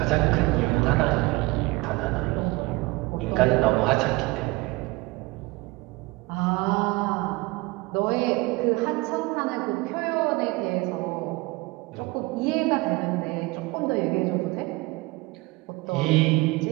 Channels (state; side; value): quieter; left; 22.8 dB